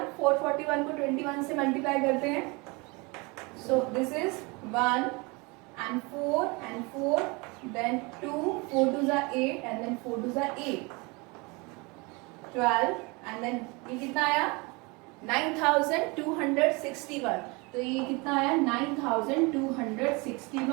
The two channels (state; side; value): quieter; left; 27.4 dB